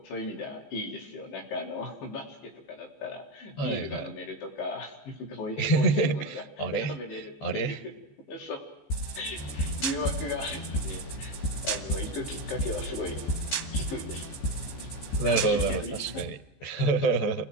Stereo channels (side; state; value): right; late; 14 ms